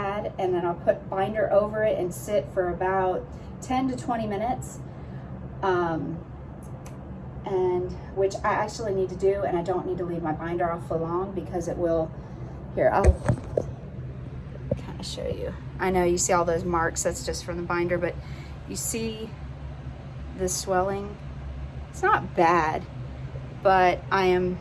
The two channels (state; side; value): identical; both; correlation 1.00